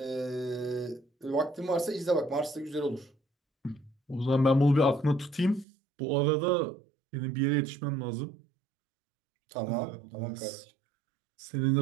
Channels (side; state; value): left; drops out; at 5.7 s